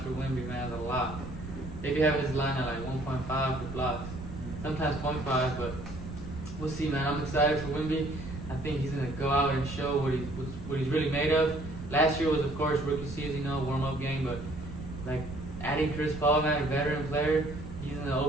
for Wemby, man, is a lot. They be having his line at like 1.5 for blocks. Sometimes 0.5, but we'll see, man. I'm excited for Wemby. I think he's going to go out and show what he's really made of. Last year was, of course, rookie season, warm-up game, but like adding Chris Paul, man, a veteran player, he's going to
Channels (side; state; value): right; noise; rumble, 10 dB below the sound